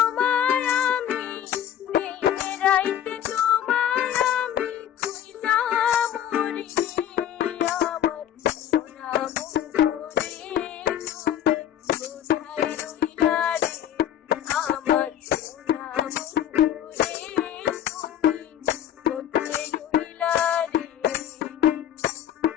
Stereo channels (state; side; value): quieter; right; 10.6 dB